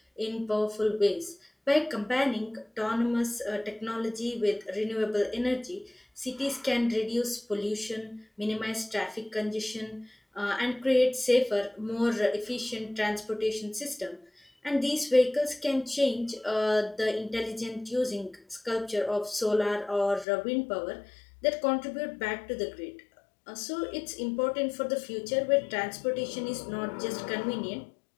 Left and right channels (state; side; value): drops out; right; at 20.2 s